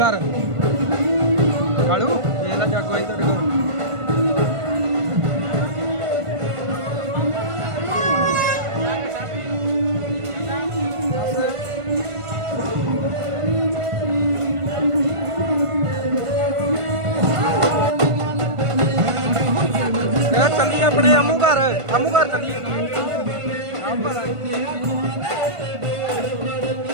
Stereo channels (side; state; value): left; late; 1.5 ms